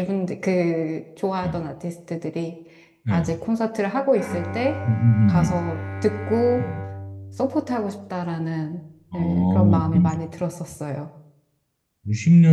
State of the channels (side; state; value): both; identical; correlation 1.00